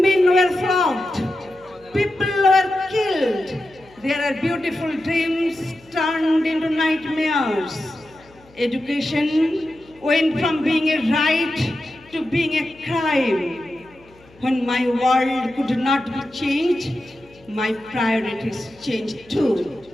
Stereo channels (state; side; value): noise; left; hum, 27 dB below the sound